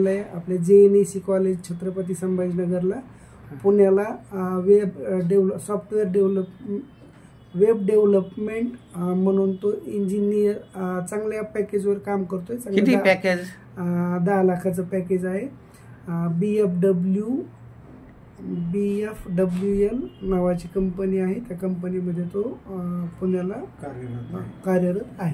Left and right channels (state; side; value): identical; both; correlation 1.00